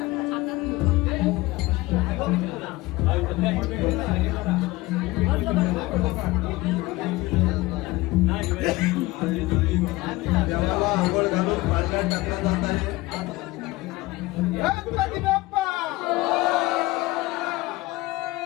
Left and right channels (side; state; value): right; quieter; 20.2 dB